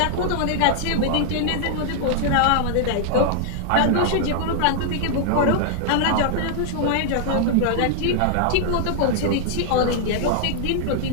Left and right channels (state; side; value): different; both; correlation -0.01